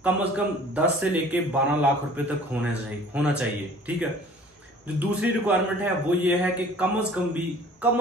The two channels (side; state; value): both; normal; correlation 0.50